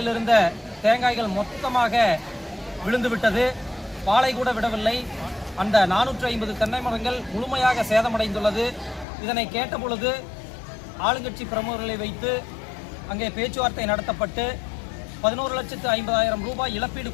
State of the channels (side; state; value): right; drops out; at 9.1 s